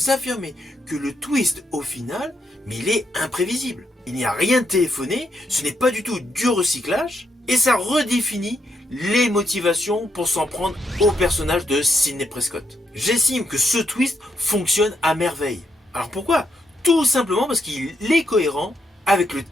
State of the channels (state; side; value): normal; both; correlation 0.79